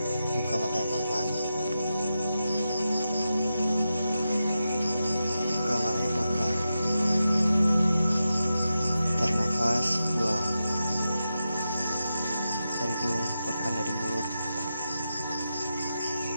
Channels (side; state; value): both; inverted; correlation -0.90